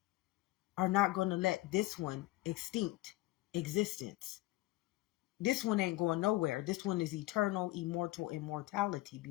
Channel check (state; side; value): quieter; right; 18.6 dB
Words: are not going to let this one extinct existence. This one ain't going nowhere. This one is eternal, immortal immortality,